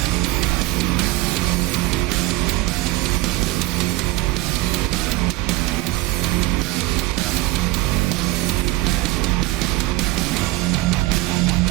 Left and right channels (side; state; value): left; quieter; 19.2 dB